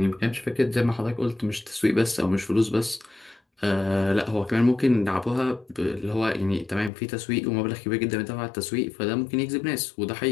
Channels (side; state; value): right; drops out; at 6.9 s